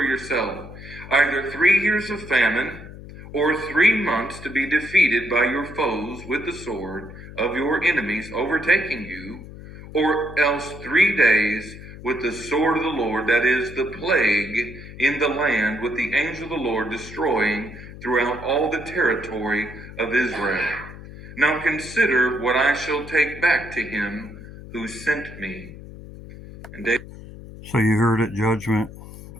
yourself either 3 years of famine, or 3 months to be defeated by your foes with the sword of your enemies overtaking you, or else 3 days with the sword of the Lord, that is, the plague in the land, with the angel of the Lord destroying throughout all the territory of Israel. Now consider what I shall take back to him who sent me." And David. So you heard it, judgment,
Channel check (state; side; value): noise; left; hum, 15 dB below the sound